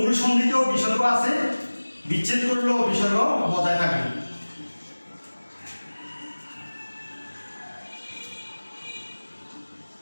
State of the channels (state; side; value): inverted; both; correlation -1.00